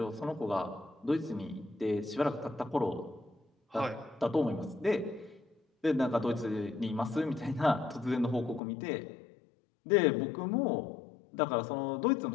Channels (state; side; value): drops out; right; at 8.6 s